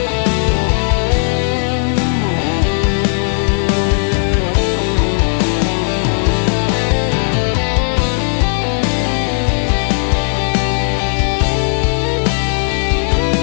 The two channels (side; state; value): right; silent; digital silence